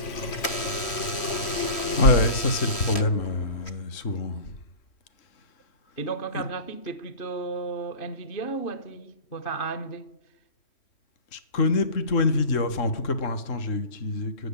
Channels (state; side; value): late; right; 3.1 ms